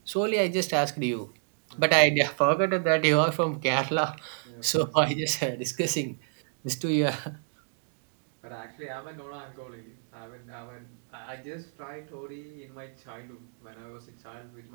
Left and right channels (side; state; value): left; silent; digital silence